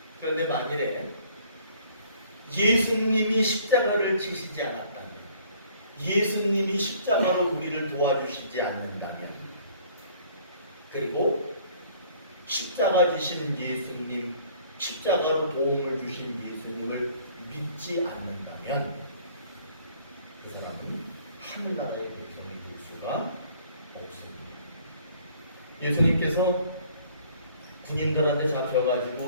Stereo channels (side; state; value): both; inverted; correlation -0.57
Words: 그런데 만일에 예수님이 십자가를 지시지 않았다면, 예수님이 십자가로 우리를 도와주시지 않는다면, 그리고 십자가 지신 예수님, 십자가로 도움을 주신 예수님을 믿지 않는다면 그 사람은 하늘나라의 백성이 될 수가 없습니다. 예수님께서 군인들한테